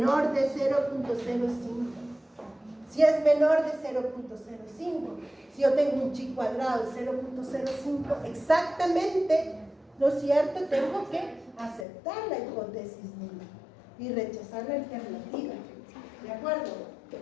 de 0.05. Si es menor de 0.05, si yo tengo un chi cuadrado de 0.05, exactamente, ¿no es cierto? Tengo que aceptar la hipótesis nula y rechazar la alternativa. ¿De acuerdo?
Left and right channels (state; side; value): drops out; right; at 11.9 s